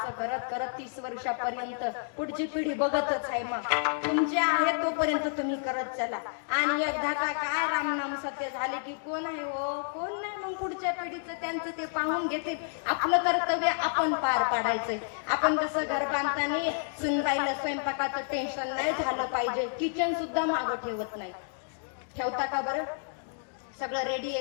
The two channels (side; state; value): right; silent; digital silence